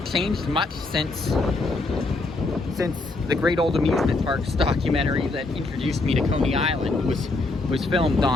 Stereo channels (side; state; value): right; quieter; 3.2 dB